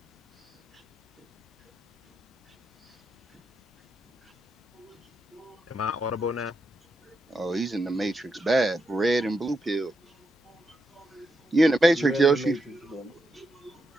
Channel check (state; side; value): normal; both; correlation 0.84